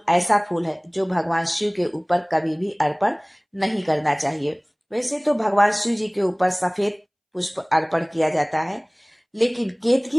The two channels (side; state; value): both; identical; correlation 1.00